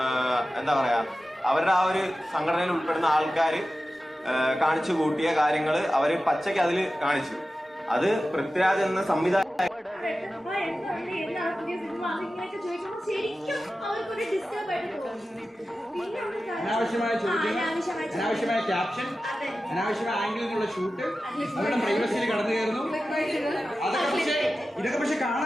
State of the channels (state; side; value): normal; both; correlation 0.94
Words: എന്താ പറയാ അവരുടെ ആ ഒരു സംഘടനയിൽ ഉൾപ്പെടുന്ന ആൾക്കാർ കാണിച്ചു കൂട്ടിയ കാര്യങ്ങൾ അവര് പച്ചയ്ക്ക് അതിൽ കാണിച്ചു. അത് പൃഥ്വിരാജ് എന്ന സംവിധായകൻ അനാവശ്യമായ ചോദ്യങ്ങൾ, അനാവശ്യമായ ക്യാപ്ഷൻ, അനാവശ്യമായ ആംഗിളിൽ നിന്നുള്ള ഷൂട്ട്, അവരുടെ പ്രൈവസിയിൽ കടന്നു കയറുന്നു. ഇതൊക്കെ പക്ഷെ